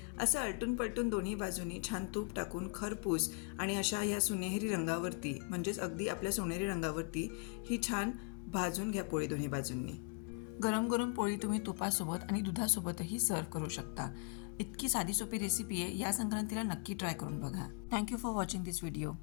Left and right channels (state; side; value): quieter; right; 35.4 dB